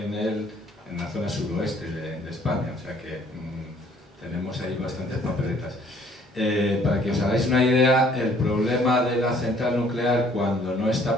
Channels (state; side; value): normal; both; correlation 0.60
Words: la zona suroeste de España, o sea que tenemos ahí bastantes papeletas. Para que os hagáis una idea, el problema de la central nuclear cuando no está